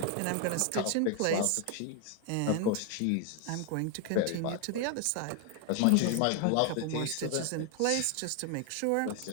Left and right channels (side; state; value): both; different; correlation 0.01